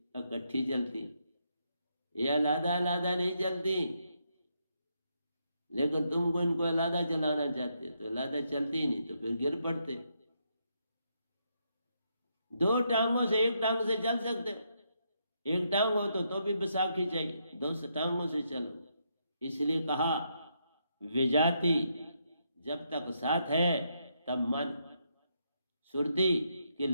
इकट्ठी चलती, ये अलादा अलादा नहीं चलती। लेकिन तुमको इनको अलादा चलाना चाहते तो अलादा चलती ही नहीं, तो फिर गिर पड़ते। दो टांगों से एक टांग से चल सकते, एक टांग हो तो भी बैसाखी चाहिए, दो टांगों से चलो। इसलिए कहा विजाति जब तक साथ है तब मन। सुरती की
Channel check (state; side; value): inverted; both; correlation -0.79